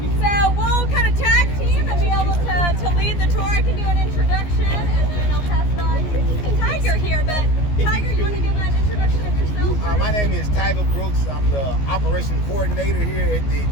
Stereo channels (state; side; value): late; right; 14 ms